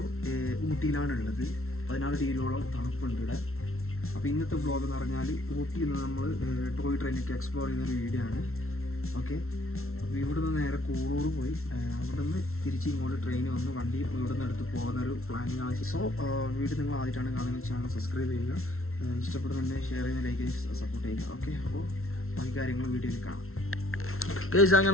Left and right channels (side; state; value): right; late; 0.62 ms